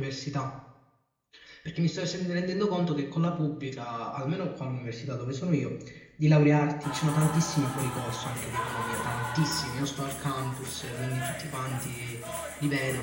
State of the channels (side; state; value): both; identical; correlation 1.00